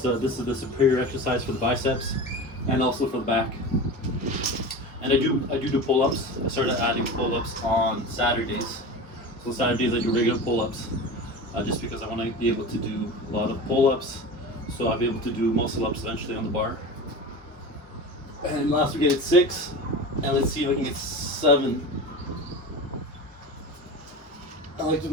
this is the superior exercise for the biceps and also for the back. And I do pull-ups. I started adding pull-ups on Saturdays. So Saturdays I do regular pull-ups, just because I want to be able to do a lot of pull-ups, so I'll be able to do muscle-ups eventually on the bar. And last week I did 6, and let's see if I can get 7. I like to be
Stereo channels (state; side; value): normal; both; correlation 0.30